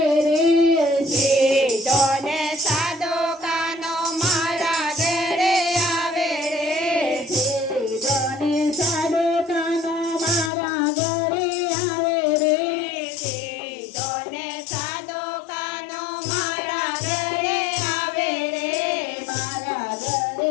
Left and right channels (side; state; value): right; drops out; at 10.5 s